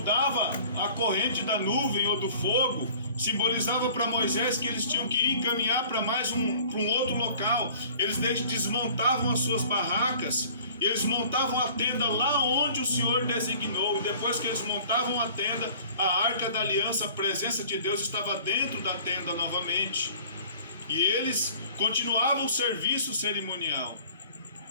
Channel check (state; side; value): inverted; both; correlation -0.48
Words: a corrente da nuvem ou do fogo, simbolizava para Moisés que eles tinham que ir caminhar para um outro local. Eles desmontavam as suas barracas, e eles montavam a tenda lá onde o Senhor designou. E depois que eles montavam a tenda, a arca da aliança, a presença de Deus estava dentro da tenda novamente. E eles continuavam o serviço cerimonial.